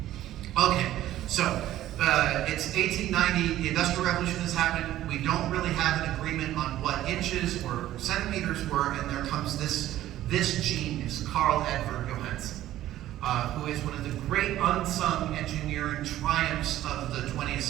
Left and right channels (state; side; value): quieter; left; 13.7 dB